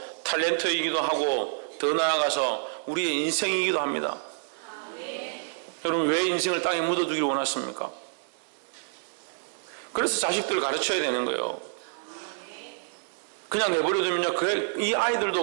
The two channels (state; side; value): silent; left; 59 dB below the other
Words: 탤런트이기도 하고 더 나아가서 우리의 인생이기도 합니다. 여러분, 왜 인생을 땅에 묻어두기를 원하십니까? 그래서 자식들을 가르쳐야 되는 거예요. 그냥 내버려두면요, 이